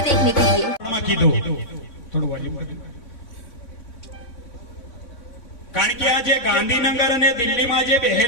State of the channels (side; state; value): right; late; 3.6 ms